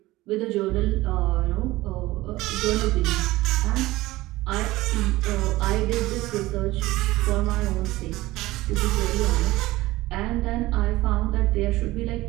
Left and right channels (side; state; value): left; quieter; 18.4 dB